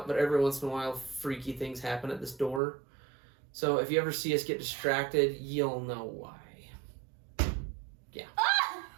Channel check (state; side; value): drops out; left; at 2.6 s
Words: but every once in a while, freaky things happen at this door. So if you ever see us get distracted, you'll know why. Yeah. Ah!